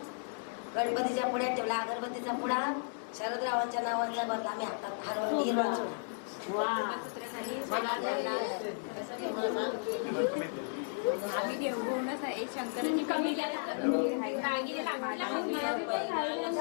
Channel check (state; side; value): silent; right; digital silence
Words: गणपतीच्या पुढ्यात ठेवला अगरबत्तीचा पुढा शरदरावांच्या नावांचा भरला आम्ही हातात हरवून हिरवा वा आम्ही देवगुणच आहे शंकरांनी कमी